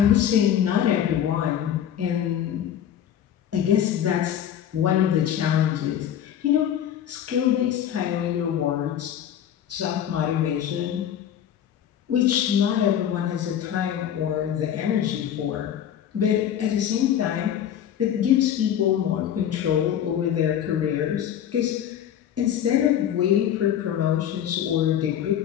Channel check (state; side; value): quieter; right; 10.0 dB